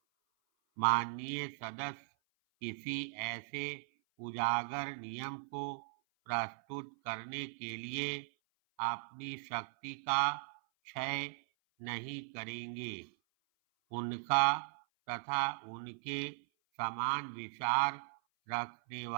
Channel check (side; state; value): left; silent; 52 dB below the other